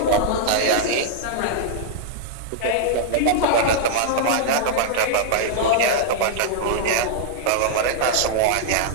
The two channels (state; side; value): different; both; correlation -0.01